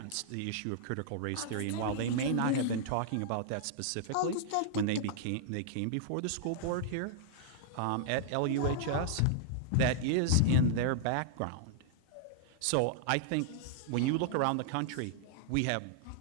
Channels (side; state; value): both; different; correlation -0.01